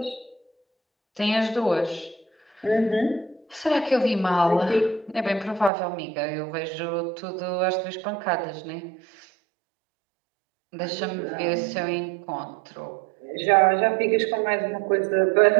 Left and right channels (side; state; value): left; drops out; at 5.7 s